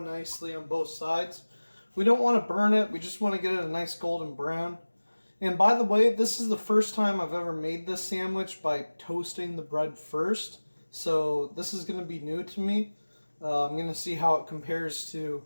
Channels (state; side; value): inverted; both; correlation -1.00